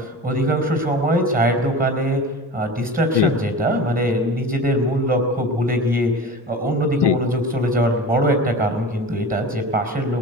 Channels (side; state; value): both; normal; correlation 0.34